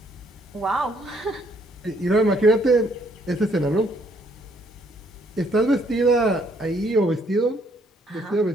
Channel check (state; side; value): normal; both; correlation 0.68